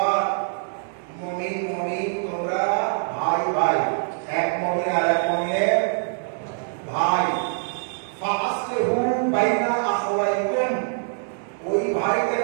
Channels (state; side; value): silent; left; 61 dB below the other